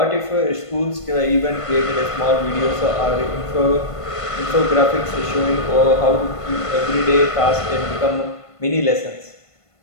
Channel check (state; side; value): late; right; 1.5 ms